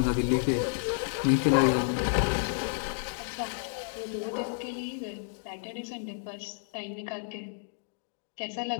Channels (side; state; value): right; silent; digital silence